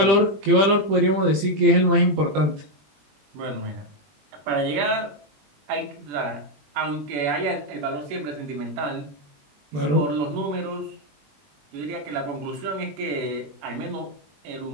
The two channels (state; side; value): late; left; 20 ms